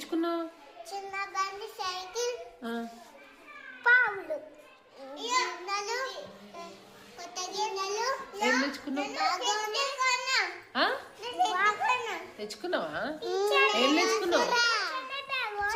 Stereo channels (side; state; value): both; identical; correlation 1.00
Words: చిన్న బండి, సైకిల్, పావులు, కొత్త గిన్నెలు. ఏం తెచ్చుకున్నావు? తెచ్చుకున్నావా? ఏం తెచ్చుకున్నావు?